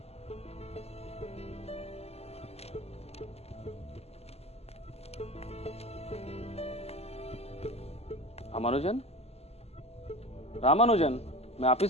रामानुजन, रामानुजन, मैं आप ही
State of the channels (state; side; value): late; right; 0.30 ms